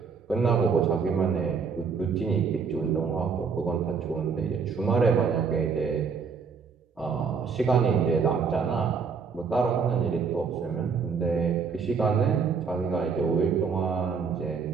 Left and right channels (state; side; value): quieter; left; 5.7 dB